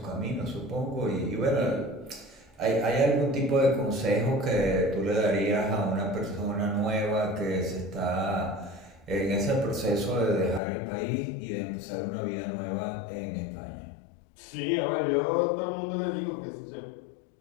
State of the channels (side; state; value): right; drops out; at 10.6 s